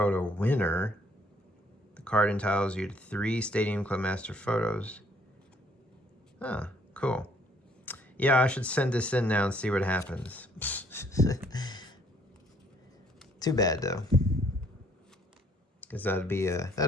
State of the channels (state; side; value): normal; both; correlation 0.64